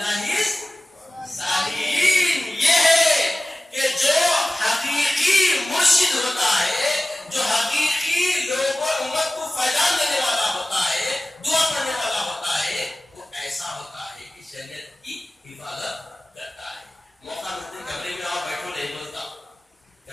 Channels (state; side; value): normal; both; correlation 0.97